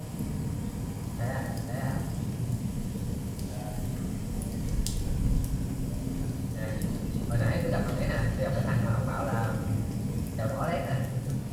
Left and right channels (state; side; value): identical; both; correlation 1.00